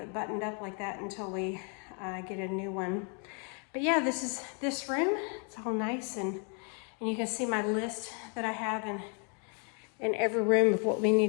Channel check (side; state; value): right; quieter; 38.4 dB